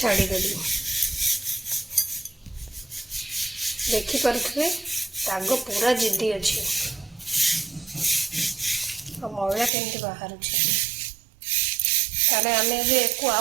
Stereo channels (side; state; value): left; drops out; at 9.7 s